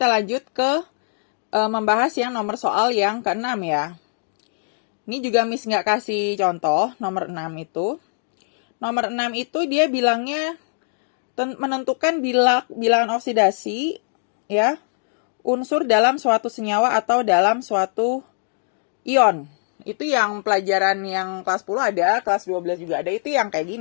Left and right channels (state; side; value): silent; right; digital silence